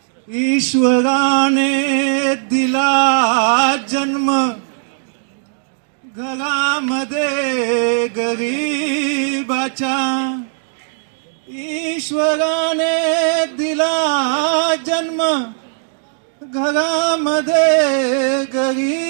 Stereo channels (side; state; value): left; silent; digital silence